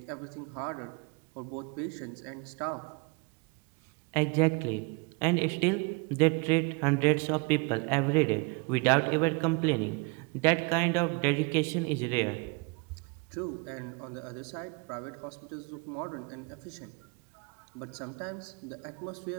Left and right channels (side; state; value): left; quieter; 30.4 dB